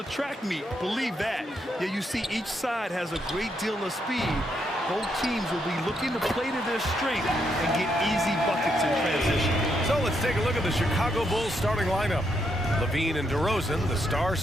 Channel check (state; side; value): normal; both; correlation 0.78